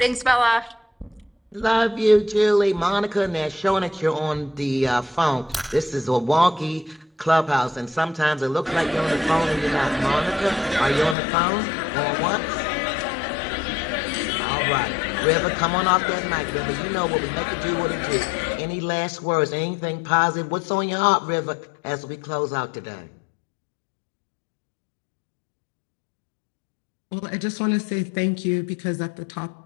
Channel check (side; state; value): right; drops out; at 11.2 s